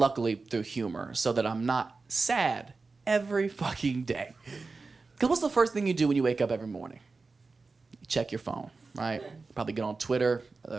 through humor, so that I'm not sad every fucking day. Because what's the first thing you do when you wake up every morning? You check your phone, right? Probably get on Twitter,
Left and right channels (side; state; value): left; quieter; 4.0 dB